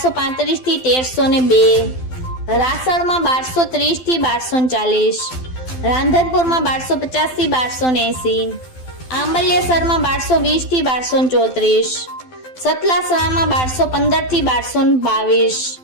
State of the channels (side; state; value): right; late; 12 ms